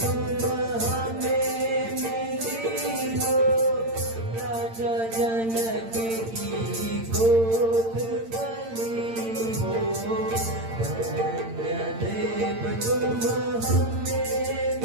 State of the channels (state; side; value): late; left; 8.8 ms